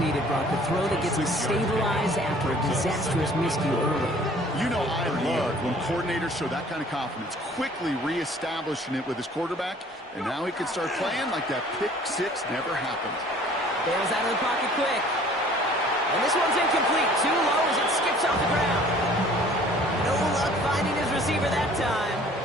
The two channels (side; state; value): both; normal; correlation 0.52